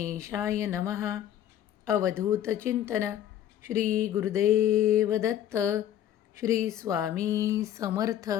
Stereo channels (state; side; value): quieter; right; 11.1 dB